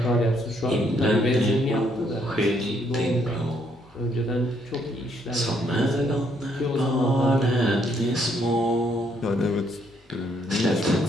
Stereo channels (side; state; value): both; normal; correlation 0.70